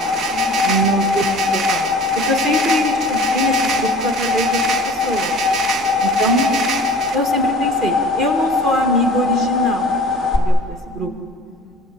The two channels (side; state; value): both; normal; correlation 0.44